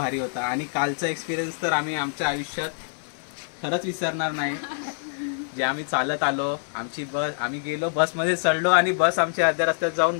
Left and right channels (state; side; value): silent; right; 59 dB below the other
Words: होता. आणि कालचा एक्सपिरियन्स तर आम्ही आमच्या आयुष्यात खरंच विसरणार नाही. जे आम्ही चालत आलो, आमची बस, आम्ही गेलो बसमध्ये चढलो आणि बस आमची अर्ध्या रस्त्यात जाऊन